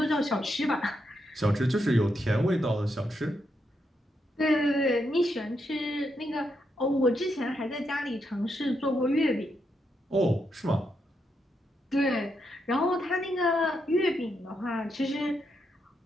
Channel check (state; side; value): normal; both; correlation 0.81